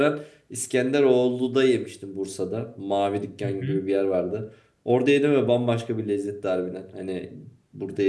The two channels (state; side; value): identical; both; correlation 1.00